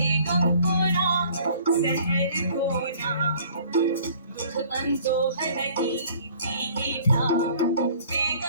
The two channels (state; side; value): inverted; both; correlation -0.53